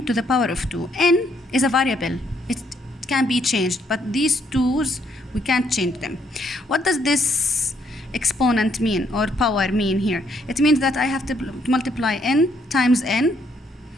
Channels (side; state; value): both; normal; correlation 0.71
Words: to the power of 2. N is a variable. It can be changed, but these 2's, we can't change them. What does this exponent mean, or power mean here? It means that I have to multiply n times n,